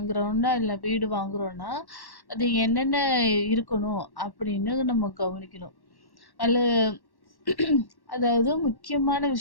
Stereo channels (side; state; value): right; late; 1.1 ms